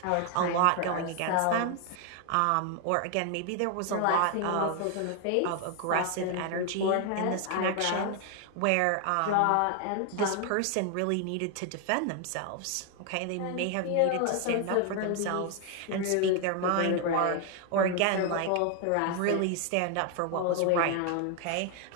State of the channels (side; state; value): both; different; correlation 0.00